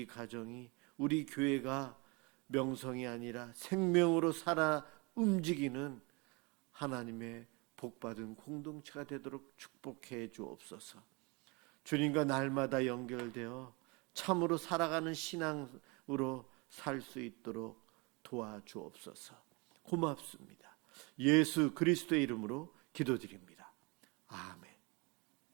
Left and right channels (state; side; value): quieter; left; 28.7 dB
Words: 가정이, 우리 교회가 명성이 아니라 생명으로 살아 움직이는 하나님의 복받은 공동체가 되도록 축복해 주옵소서. 주님과 날마다 연결되어 참으로 살아가는 신앙으로 살 수 있도록 도와주옵소서. 고맙습니다. 예수 그리스도의 이름으로 기도드립니다. 아멘.